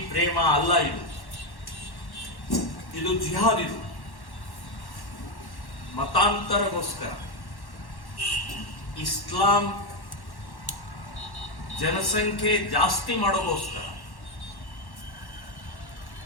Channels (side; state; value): right; late; 1.1 ms